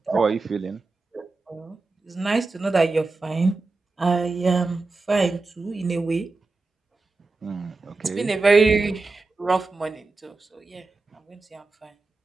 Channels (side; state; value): left; quieter; 3.6 dB